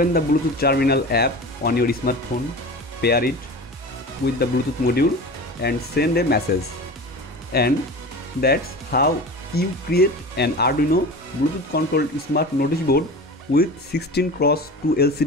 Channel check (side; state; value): both; normal; correlation 0.33